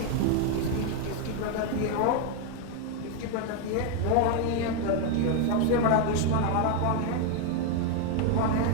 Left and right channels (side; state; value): both; different; correlation 0.01